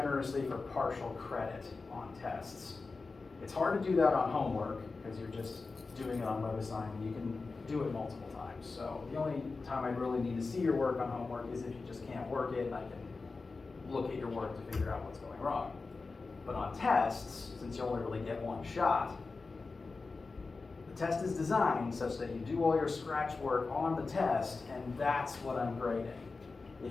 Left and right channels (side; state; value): right; quieter; 4.0 dB